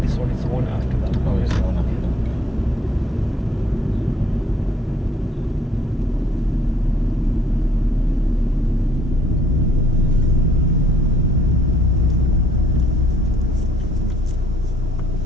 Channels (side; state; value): both; normal; correlation 0.64